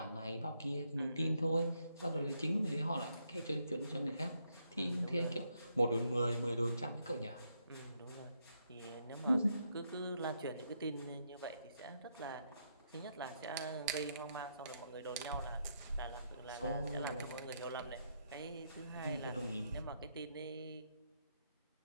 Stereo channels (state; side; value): inverted; both; correlation -0.78